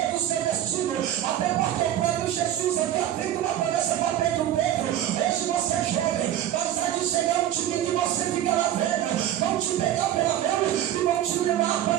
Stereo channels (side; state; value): left; quieter; 11.7 dB